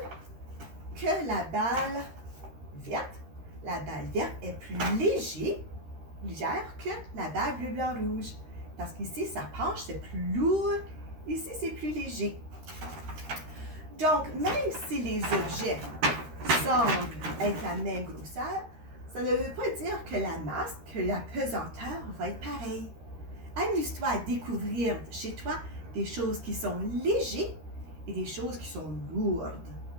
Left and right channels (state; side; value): late; left; 13 ms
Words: que la balle verte. La balle verte est plus légère que la balle bleu, blanc, rouge. Parce qu'ici, ça penche, c'est plus lourd. Ici, c'est plus léger. Donc, même si les objets semblent être la même grosseur, ça ne veut pas dire que la masse, que la pesanteur va être pareille. Amuse-toi à découvrir chez toi des choses qui sont légères et des choses qui sont lourdes.